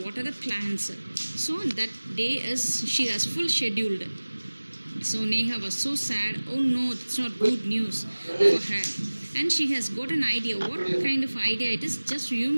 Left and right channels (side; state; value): both; inverted; correlation -1.00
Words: water the plants. So that day is she has full scheduled. So Neha was so sad. Oh no, it's not good news for her. And she has got an idea. What kind of idea it is? Just you